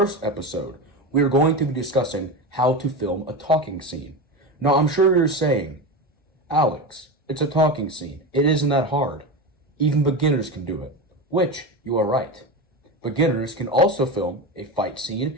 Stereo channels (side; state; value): both; normal; correlation 0.21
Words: episode, we are going to be discussing how to film a talking scene. Now I'm sure you're saying, Alex, it's a talking scene. It isn't that hard. Even beginners can do it. Which, you are right. Beginners can also film a fight